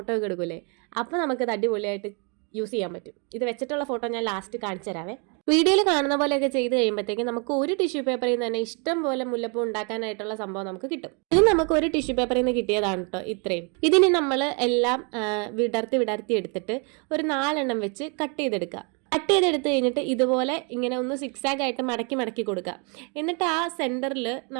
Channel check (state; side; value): quieter; left; 35.1 dB